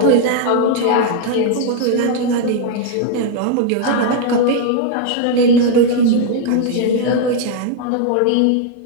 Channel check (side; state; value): both; different; correlation 0.00